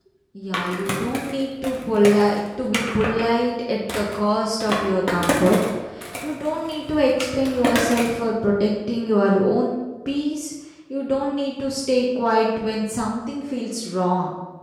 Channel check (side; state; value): both; identical; correlation 1.00